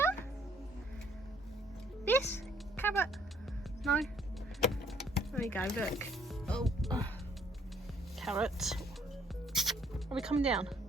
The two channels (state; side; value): normal; both; correlation 0.63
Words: This carrot. No. There we go. Look. Oh, carrot. Are we coming down?